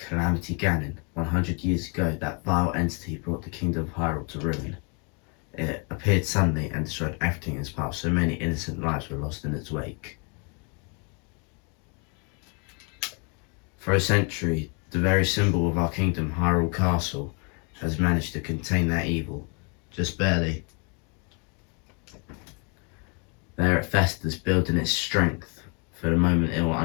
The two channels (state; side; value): quieter; right; 35.1 dB